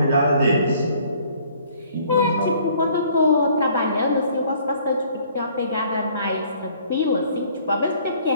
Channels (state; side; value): inverted; both; correlation -0.58